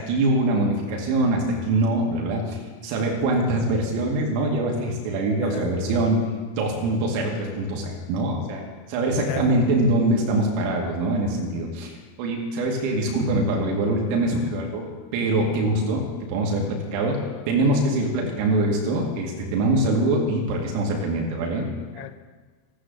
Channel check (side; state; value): left; late; 35 ms